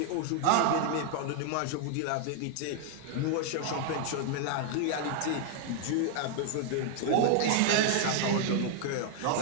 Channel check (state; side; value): different; both; correlation 0.00